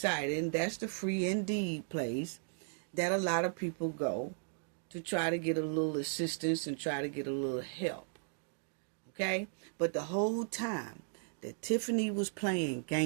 And that's the Free Indeed place that a lot of people go to try to get a little assistance and try to get a little help. Okay? But the whole time that Tiffany was playing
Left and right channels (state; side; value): silent; left; digital silence